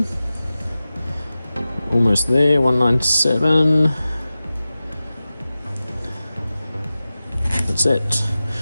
Almost there, 197. That's it.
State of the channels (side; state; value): both; inverted; correlation -0.95